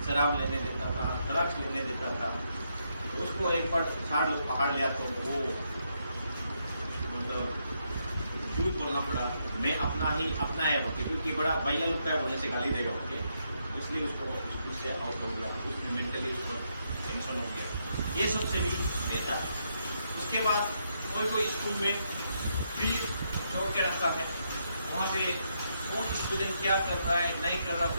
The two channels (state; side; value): inverted; both; correlation -0.78